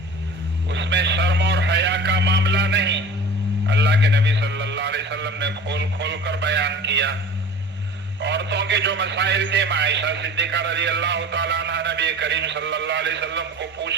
اس میں شرم اور حیا کا معاملہ نہیں. اللہ کے نبی صلی اللہ علیہ وسلم نے کھول کھول کر بیان کیا. عورتوں کے جو مسائل تھے عائشہ صدیقہ رضی اللہ تعالیٰ عنہ نبی کریم صلی اللہ علیہ وسلم کو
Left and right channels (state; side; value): normal; both; correlation 0.39